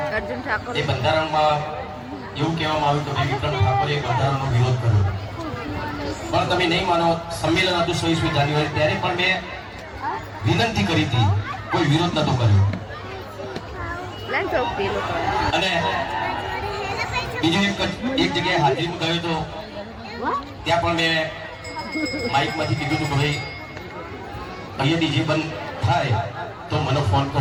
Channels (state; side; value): identical; both; correlation 1.00